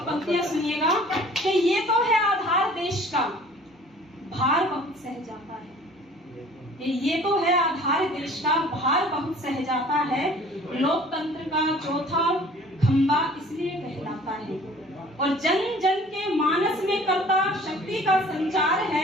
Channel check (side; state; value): both; normal; correlation 0.50